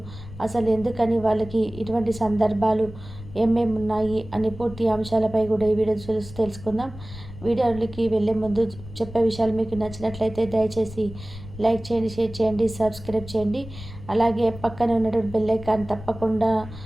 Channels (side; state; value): left; noise; rumble, 14 dB below the sound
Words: అసలు ఎందుకని వాళ్ళకి ఇటువంటి సందర్భాలు ఏమేమి ఉన్నాయి అని పూర్తి అంశాలపై కూడా ఈ వీడియో చూసి తెలుసుకుందాం. వీడియోలకి వెళ్ళే ముందు చెప్పే విషయాలు మీకు నచ్చినట్లయితే దయచేసి లైక్ చేయండి, షేర్ చేయండి, సబ్స్క్రైబ్ చేయండి. అలాగే పక్కన ఉన్నటువంటి బెల్ ఐకాన్ తప్పకుండా